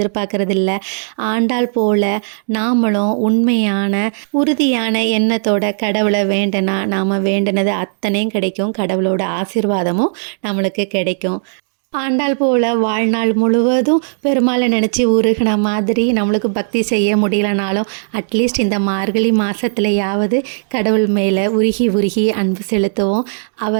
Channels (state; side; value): silent; left; digital silence